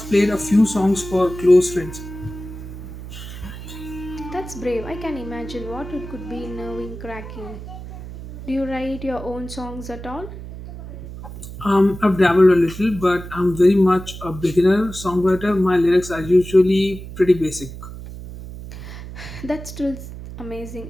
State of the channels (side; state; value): right; noise; hum, 12 dB below the sound